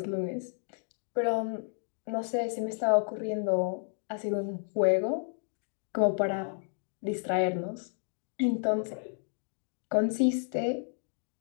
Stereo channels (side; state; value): right; silent; 56 dB below the other